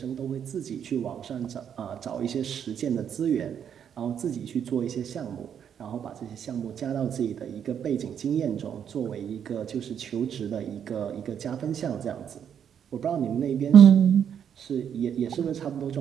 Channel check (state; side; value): quieter; left; 8.5 dB